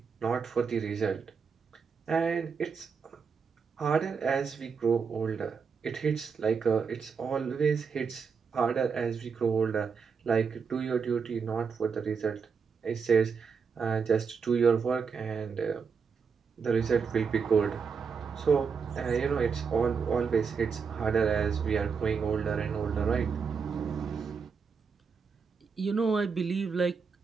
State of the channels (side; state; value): left; quieter; 5.7 dB